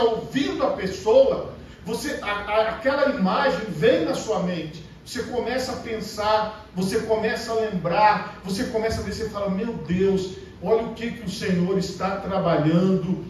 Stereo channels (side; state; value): both; identical; correlation 1.00